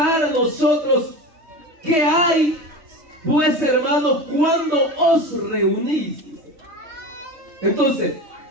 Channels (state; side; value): late; left; 3.2 ms